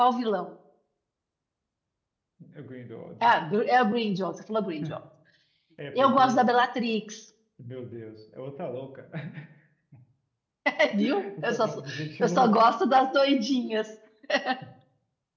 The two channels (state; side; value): identical; both; correlation 1.00